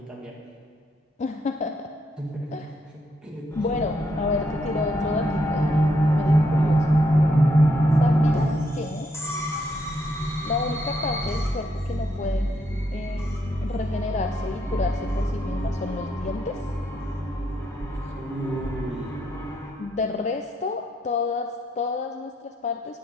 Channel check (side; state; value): both; normal; correlation 0.76